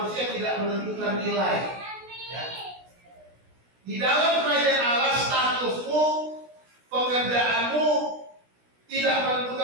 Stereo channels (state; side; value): late; left; 16 ms